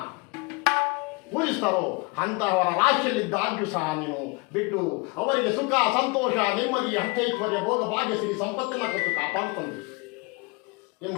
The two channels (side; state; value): right; quieter; 28.5 dB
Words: ಪೂಜಿಸ್ತಾರೋ ಅಂತಹವರ ರಾಶಿಯಲ್ಲಿದ್ದಾಗ್ಯೂ ಸಹ ನೀನು ಬಿಟ್ಟು ಅವರಿಗೆ ಸುಖ, ಸಂತೋಷ, ನೆಮ್ಮದಿ, ಅಷ್ಟೈಶ್ವರ್ಯ, ಭೋಗ, ಭಾಗ್ಯ, ಶ್ರೀ ಸಂಪತ್ತನ್ನು ಕೊಟ್ಟು ಕಾಪಾಡುತ್ತಂದೆ